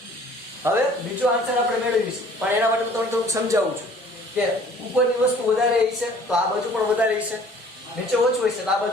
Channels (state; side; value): normal; both; correlation 0.52